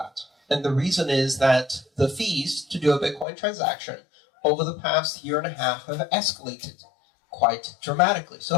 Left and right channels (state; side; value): drops out; right; at 3.2 s